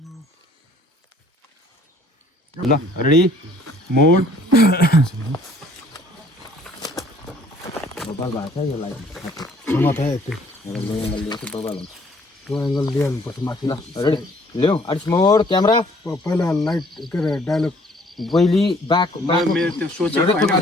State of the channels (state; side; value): normal; both; correlation 0.58